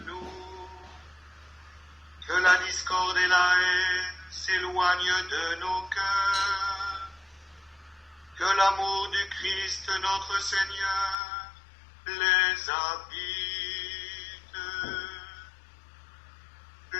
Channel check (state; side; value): drops out; right; at 11.2 s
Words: nous. Que la discorde et la haine s'éloignent de nos cœurs. Que l'amour du Christ notre Seigneur les habite.